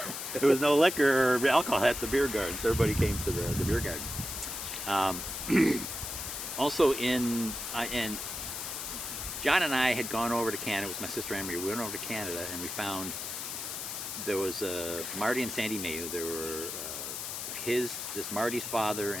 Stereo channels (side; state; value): left; noise; hiss, 5 dB below the sound